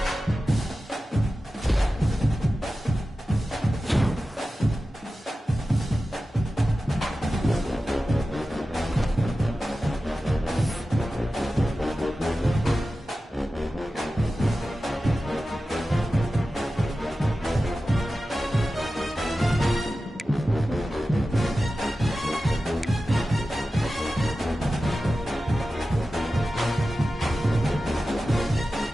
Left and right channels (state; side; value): normal; both; correlation 0.94